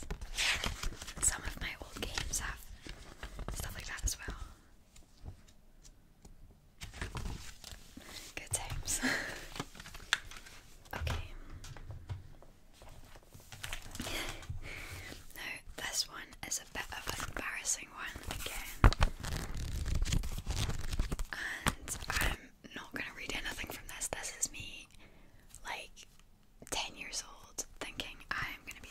Some of my old games have stuff like that as well. Good times. Okay. Now this one is a bit of an embarrassing one again. And I'm not gonna read anything from this. This is me like 10 years old thinking I'm gonna be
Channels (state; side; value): identical; both; correlation 1.00